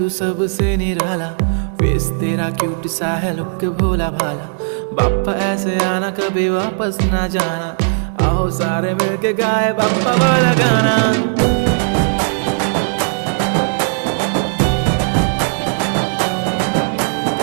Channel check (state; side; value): silent; left; digital silence